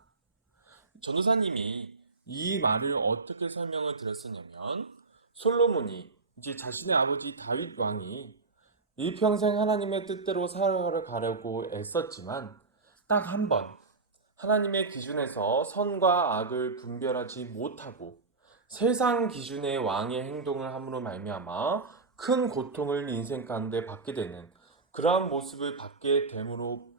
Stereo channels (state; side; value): quieter; left; 4.0 dB